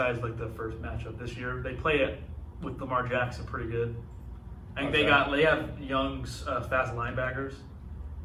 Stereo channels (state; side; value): identical; both; correlation 1.00